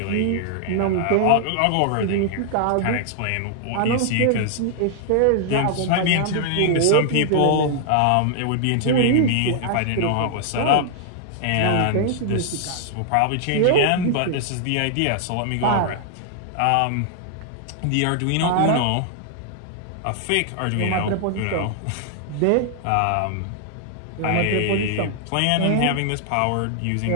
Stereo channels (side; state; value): both; different; correlation 0.00